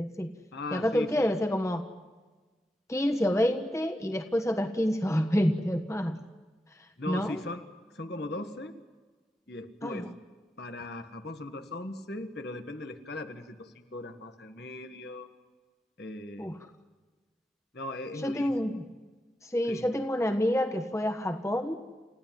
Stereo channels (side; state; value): both; normal; correlation 0.86